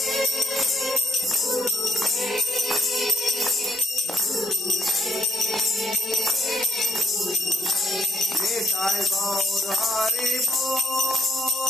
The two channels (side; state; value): both; normal; correlation 0.69